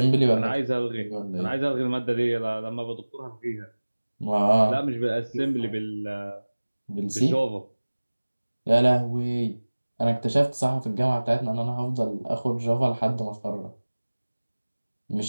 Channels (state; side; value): inverted; both; correlation -1.00